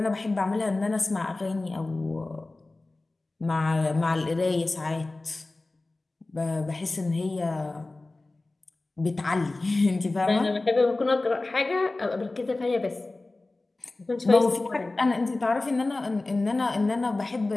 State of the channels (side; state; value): right; quieter; 3.1 dB